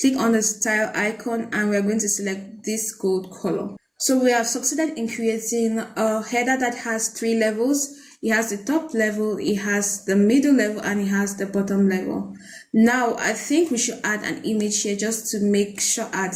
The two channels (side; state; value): both; identical; correlation 1.00